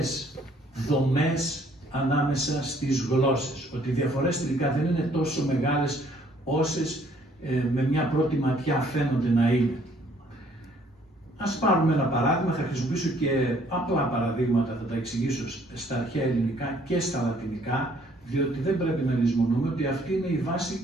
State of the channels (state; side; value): normal; both; correlation 0.62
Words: δομές ανάμεσα στις γλώσσες. Ότι οι διαφορές τελικά δεν είναι τόσο μεγάλες όσες με μια πρώτη ματιά φαίνονται να είναι. Ας πάρουμε ένα παράδειγμα, θα χρησιμοποιήσω και απλά παραδείγματα, θα τα εξηγήσω στα αρχαία ελληνικά και στα λατινικά, διότι δεν πρέπει να λησμονούμε ότι αυτή είναι η βάση,